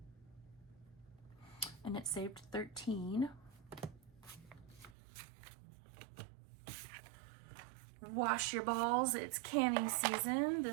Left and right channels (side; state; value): left; drops out; at 5.0 s